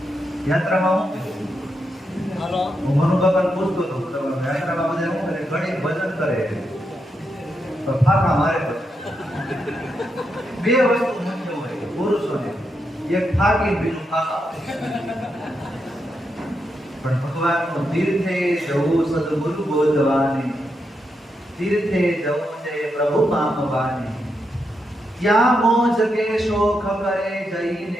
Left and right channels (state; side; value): normal; both; correlation 0.83